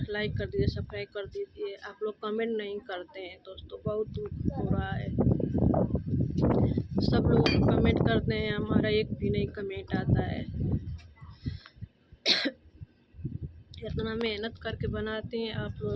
लाइक कर दीजिए, सब्सक्राइब कर दीजिए। आप लोग कमेंट नहीं करते हैं दोस्तों, बहुत दुख हो रहा है। सब लोग कमेंट करते हैं, हमारा एक भी नहीं कमेंट आता है। इतना मेहनत करके बनाते हैं, आप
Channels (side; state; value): both; identical; correlation 1.00